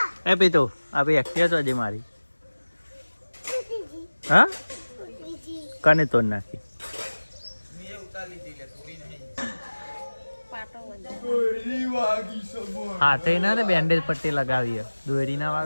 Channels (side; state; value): both; inverted; correlation -1.00